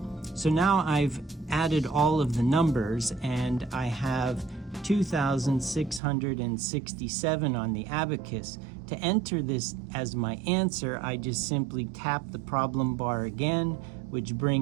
So now I've added all of the numbers, and I have 2,667 on the abacus. To enter this as my answer, I just simply tap the problem bar again, which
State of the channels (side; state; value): left; drops out; at 6.0 s